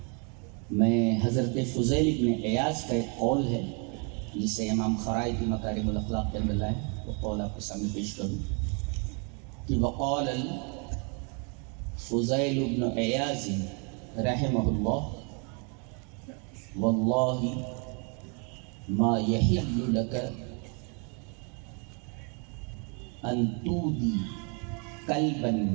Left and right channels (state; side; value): quieter; left; 36.2 dB